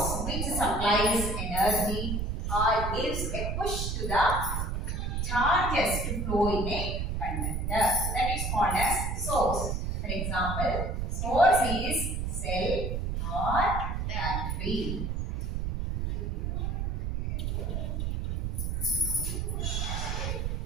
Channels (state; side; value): noise; right; rumble, 1 dB below the sound